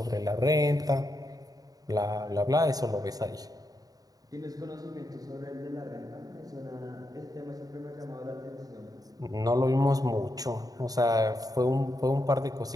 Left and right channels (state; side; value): late; left; 0.18 ms